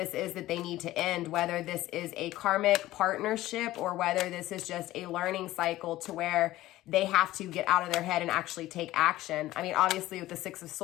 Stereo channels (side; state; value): right; quieter; 16.0 dB